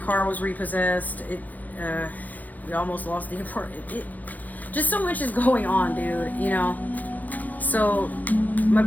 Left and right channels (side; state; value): right; late; 0.083 ms